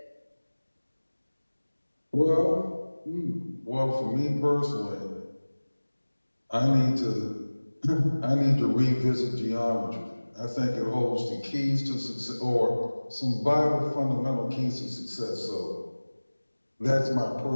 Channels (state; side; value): inverted; both; correlation -1.00